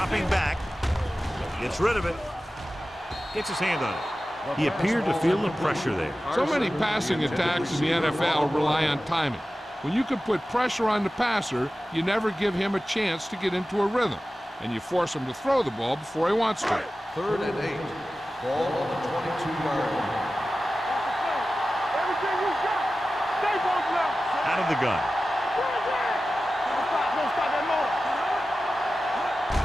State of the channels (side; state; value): both; normal; correlation 0.95